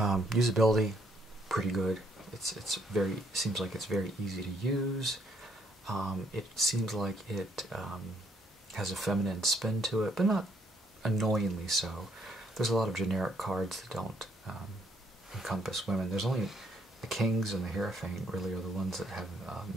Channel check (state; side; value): normal; both; correlation 0.69